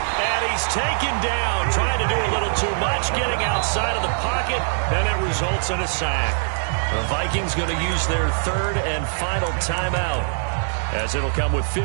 And he's taken down, trying to do a little too much, getting outside of the pocket, and it results in a sack. The Vikings going to use their 3rd and final timeout as it'll come with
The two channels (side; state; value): left; silent; 62 dB below the other